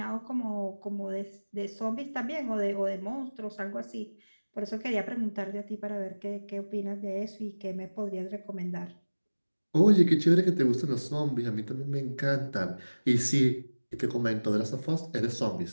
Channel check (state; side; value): inverted; both; correlation -1.00